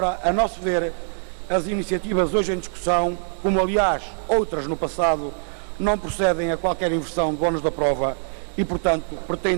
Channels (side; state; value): left; silent; 58 dB below the other